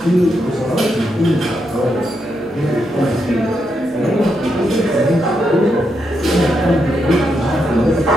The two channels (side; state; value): both; normal; correlation 0.82